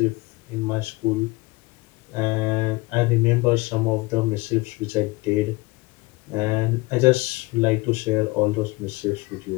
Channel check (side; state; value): right; quieter; 22.6 dB